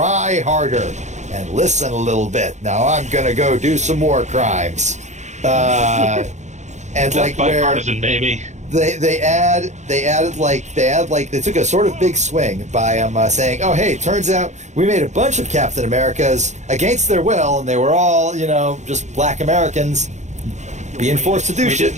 harder and listen a little bit. Now I'm gonna go do some more crimes. And That's like where bipartisan, baby. they took a sort of big swing by saying, oh hey, turns out we made a bunch of Captain Americas against their will, and they were all, just black Americans being forced to do shit.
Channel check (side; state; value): left; late; 0.34 ms